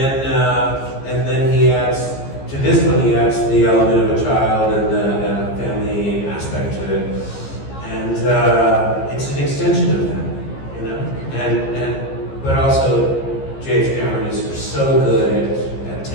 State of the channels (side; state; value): right; late; 15 ms